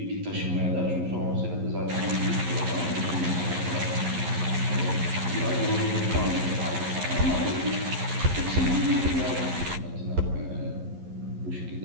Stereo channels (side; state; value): left; late; 11 ms